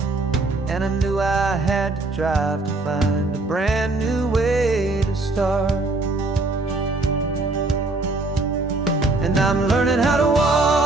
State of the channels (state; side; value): quieter; left; 3.1 dB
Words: and I knew I had to drive to find a brand new way to start. And I'm learning how to